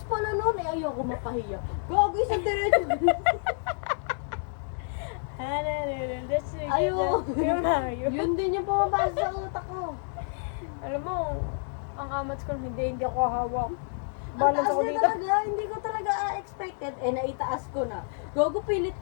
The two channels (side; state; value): right; silent; 59 dB below the other